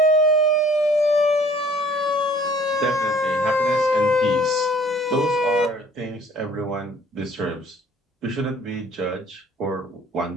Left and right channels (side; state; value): both; normal; correlation 0.54